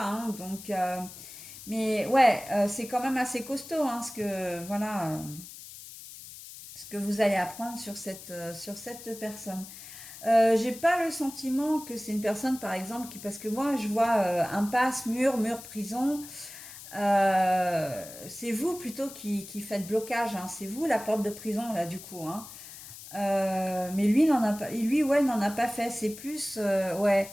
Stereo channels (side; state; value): left; noise; hiss, 15 dB below the sound